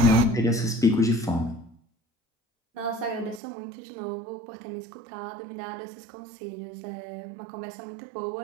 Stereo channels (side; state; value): left; drops out; at 3.4 s